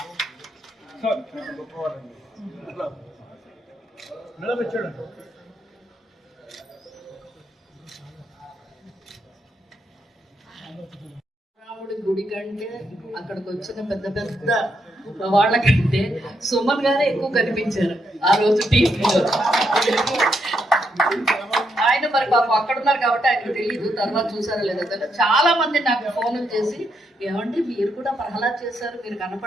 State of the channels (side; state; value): both; normal; correlation 0.79